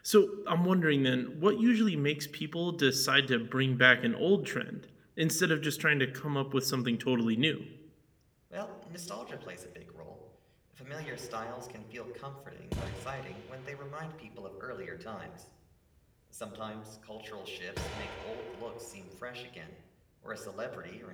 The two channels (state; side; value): identical; both; correlation 1.00